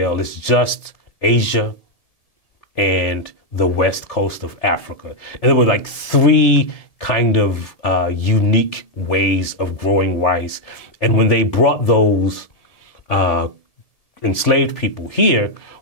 it's just Asia and the west coast of Africa. And there were like three kind of unique ways of growing rice. And when they brought those enslaved people here,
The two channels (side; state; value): right; late; 1.7 ms